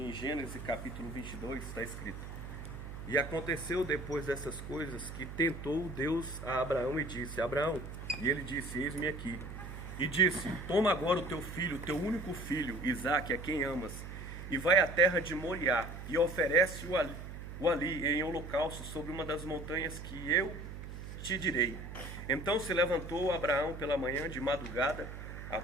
Gênesis capítulo 22 está escrito: E aconteceu depois dessas coisas que tentou Deus a Abraão e disse: Abraão, e ele disse: Eis-me aqui. E disse: Toma agora o teu filho, teu único filho, Isaque, a quem amas, e vai à terra de Moriá, e oferece-o ali em holocausto sobre uma das montanhas que eu te direi. Então se levantou Abraão pela manhã de madrugada,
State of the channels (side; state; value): right; noise; hum, 10 dB below the sound